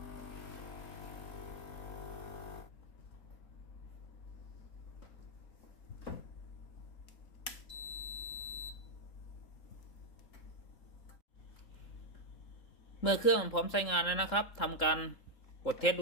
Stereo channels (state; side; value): late; right; 3.7 ms